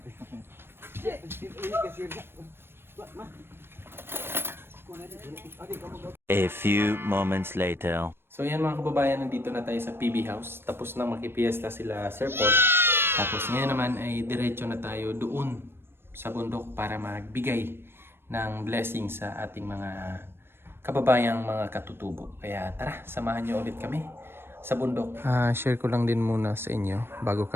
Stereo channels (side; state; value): left; late; 0.11 ms